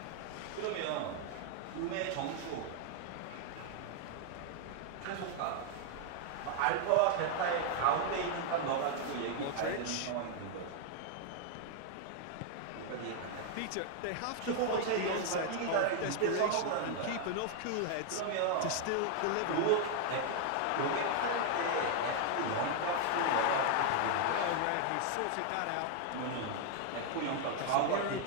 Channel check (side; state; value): both; different; correlation 0.00